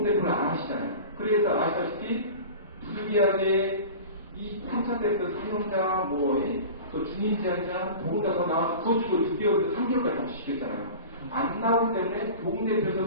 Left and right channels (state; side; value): inverted; both; correlation -0.36